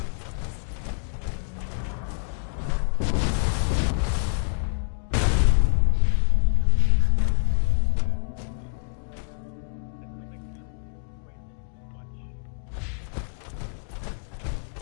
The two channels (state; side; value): silent; right; digital silence